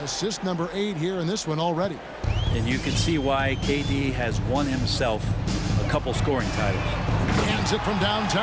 number 8 here in this one already. And you can see why KD has won himself a couple scoring titles. Hands it from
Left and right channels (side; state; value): both; identical; correlation 1.00